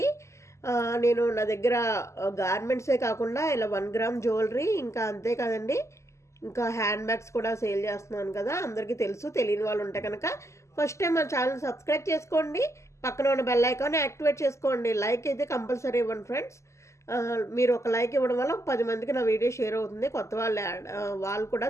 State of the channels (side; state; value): right; late; 0.14 ms